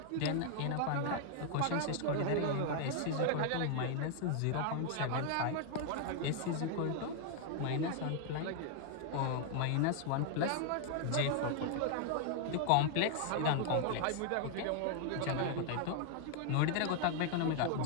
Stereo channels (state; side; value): different; both; correlation 0.00